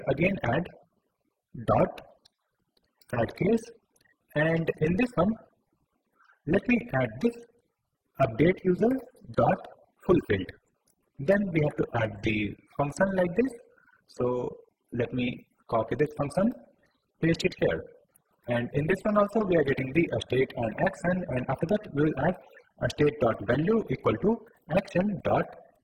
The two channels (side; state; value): both; identical; correlation 1.00